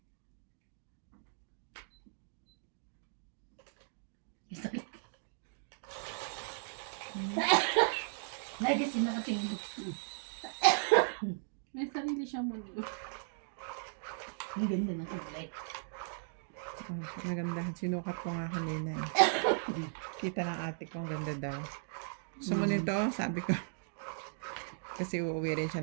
Lagi kasi nakatingin. May sarili siyang mundo. Ang ganda na kulay. Nagandahan. Sinukat ko nga kanina eh. Kita ng ate ko, ang ganda daw. Gusto mo nito? Sabi ko. Kasi uuwi rin siya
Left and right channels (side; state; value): left; silent; digital silence